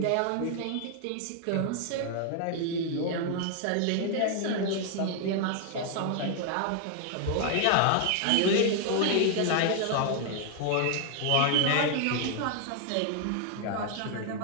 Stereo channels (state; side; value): different; both; correlation 0.00